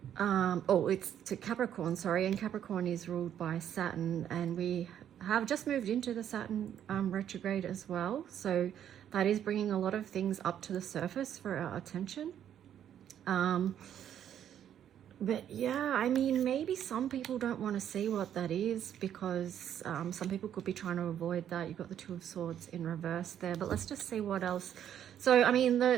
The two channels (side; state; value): left; quieter; 10.0 dB